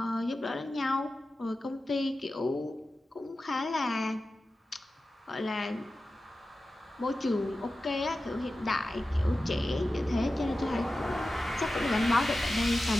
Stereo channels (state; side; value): normal; both; correlation 0.94